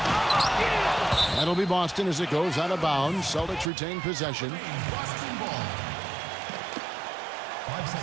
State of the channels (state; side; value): drops out; left; at 3.7 s